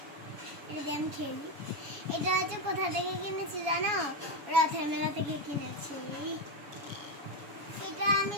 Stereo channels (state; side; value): late; left; 7.1 ms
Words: এটা দিয়ে আমি খেলি। এটা হচ্ছে কোথা থেকে কিনেছি জানো? রথের মেলা থেকে কিনেছি। এটা আমি